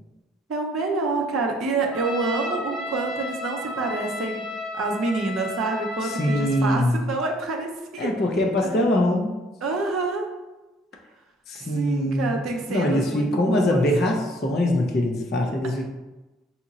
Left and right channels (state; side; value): normal; both; correlation 0.60